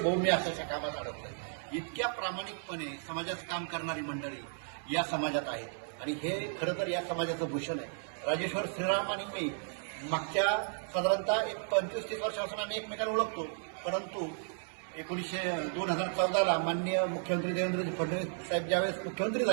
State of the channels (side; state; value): left; silent; 55 dB below the other